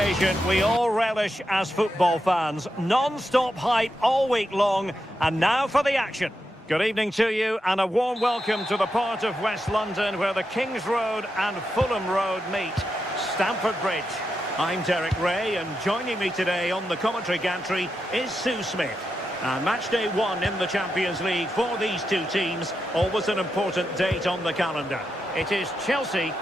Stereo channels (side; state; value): both; normal; correlation 0.86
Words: we all relish as football fans. Non-stop hype all week long, and now for the action. Good evening to you, and a warm welcome to the part of West London where the Kings Road and Fulham Road meet, Stamford Bridge. I'm Derek Ray, and joining me today on the commentary gantry is Sue Smith. And match day 1 in the Champions League for these two teams, always an important date on the calendar. It is Chelsea